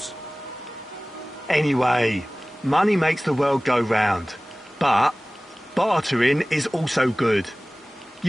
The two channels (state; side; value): normal; both; correlation 0.98